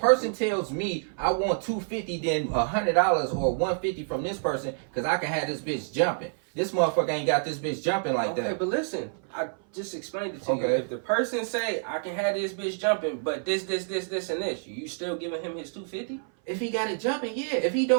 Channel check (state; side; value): silent; left; 57 dB below the other